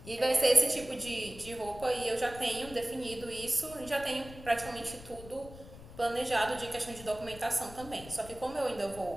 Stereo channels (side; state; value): left; noise; rumble, 16 dB below the sound